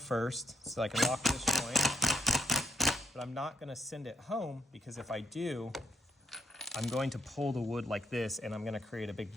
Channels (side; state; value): both; normal; correlation 0.74